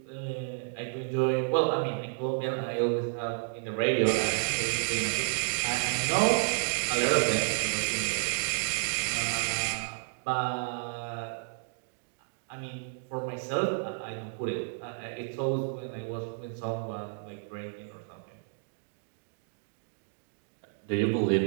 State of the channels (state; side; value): silent; left; digital silence